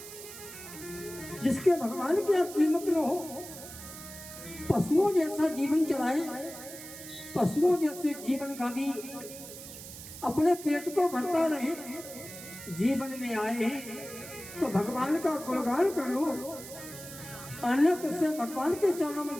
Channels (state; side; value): noise; right; hiss, 13 dB below the sound